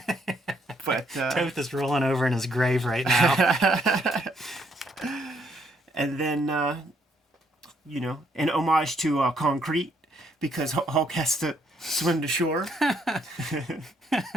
But Toth is rolling over in his grave right now. and then, an homage to Concrete, because Hulk has to swim to shore. I'm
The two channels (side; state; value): both; normal; correlation 0.71